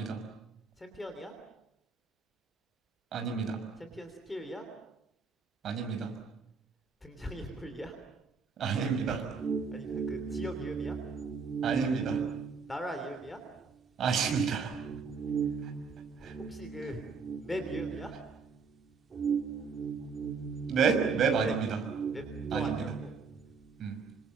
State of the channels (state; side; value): quieter; left; 5.1 dB